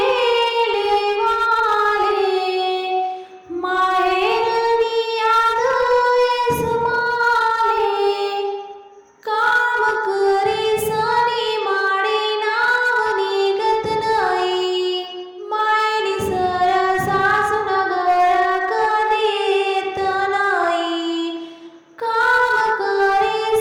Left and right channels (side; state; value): both; identical; correlation 1.00